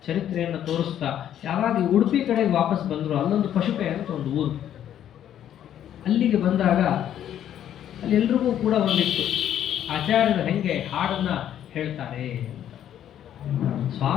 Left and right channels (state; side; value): quieter; right; 10.6 dB